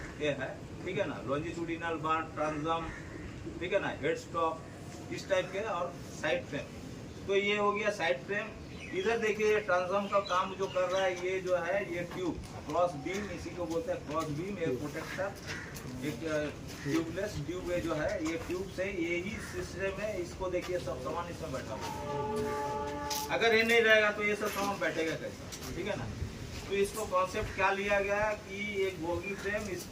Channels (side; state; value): both; identical; correlation 1.00